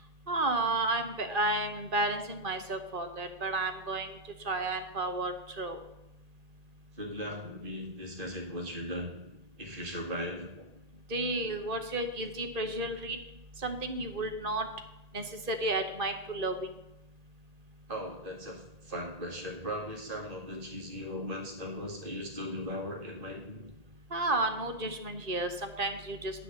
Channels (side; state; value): left; late; 1.8 ms